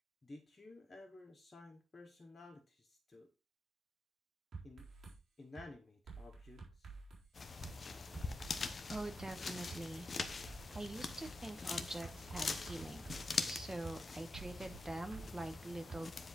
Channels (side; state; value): both; normal; correlation 0.89